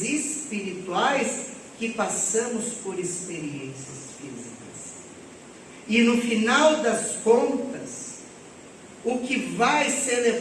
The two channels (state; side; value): identical; both; correlation 1.00